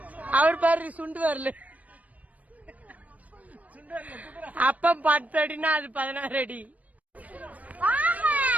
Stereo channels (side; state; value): left; late; 0.071 ms